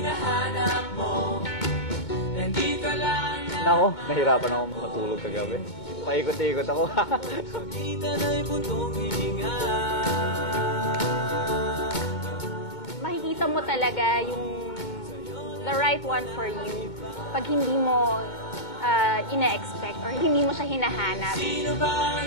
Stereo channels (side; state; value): right; late; 2.2 ms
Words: mo, nandito lang na. Nako, nahirapan ako matulog kagabi. Paikot-ikot ako. Sa kita na'y puntong hininga. Makikita mo talaga yung the right one for you pag hindi mo ina-expect or hindi mo siya hinahanap. Sino ba ang